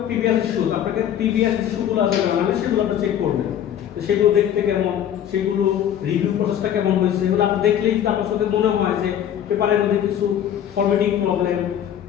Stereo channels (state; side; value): quieter; right; 10.1 dB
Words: প্রিভিয়াস ইস্যুজ, আপনাকে প্রিভিয়াস ইস্যুগুলো আছে মানে সেগুলো আপনি চেক করবেন, তো সেগুলো দেখতে কেমন, সেগুলো রিভিউ প্রসেসটা কেমন হয়েছে, এগুলো আপনি দেখলেই আপনার চোখে মনে হয় যে পেপারের মধ্যে কিছু ফরম্যাটিং প্রবলেম